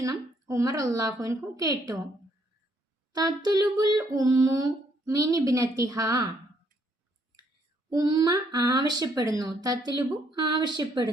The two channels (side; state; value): both; normal; correlation 0.70